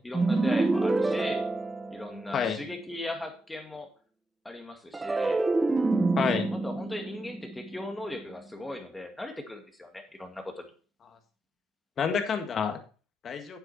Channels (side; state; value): both; normal; correlation 0.85